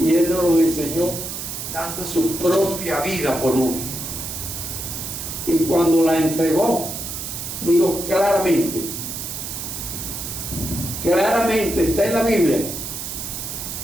Él nos los enseñó dando su propia vida por uno. Y cuando la entregó, digo claramente está en la Biblia,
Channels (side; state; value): right; noise; hiss, 6 dB below the sound